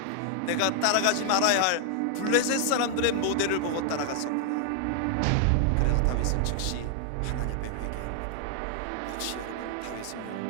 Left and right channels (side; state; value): both; different; correlation 0.00